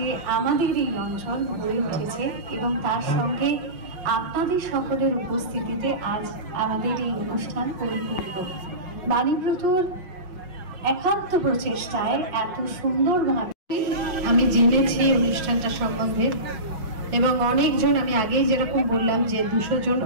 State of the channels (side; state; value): left; late; 5.6 ms